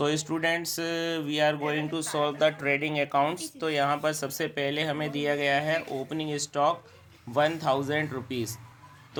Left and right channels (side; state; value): both; identical; correlation 1.00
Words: students, we are going to solve the trading accounts. तो यहाँ पर सबसे पहले हमें दिया गया है ओपनिंग स्टॉक 1000 रुपीज़।